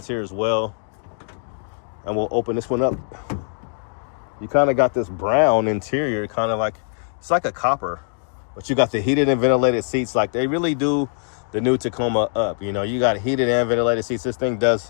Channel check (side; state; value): right; silent; digital silence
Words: here as well. And we'll open this one up. You kind of got this brown interior, kind of like, it's like a copper, but you got the heated and ventilated seats. Like, they really do the new Tacoma up. You know, you got heated and ventilated seats. This thing